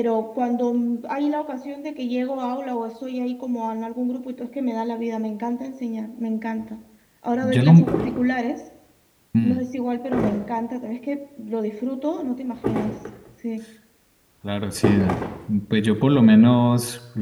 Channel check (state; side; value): identical; both; correlation 1.00